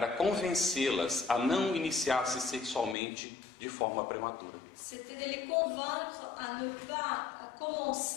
convencê-las a não iniciar-se sexualmente de forma prematura. c'était de les convaincre à ne pas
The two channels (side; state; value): right; drops out; at 3.0 s